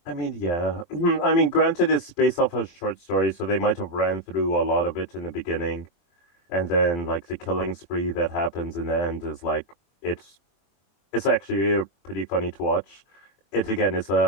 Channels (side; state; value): right; late; 23 ms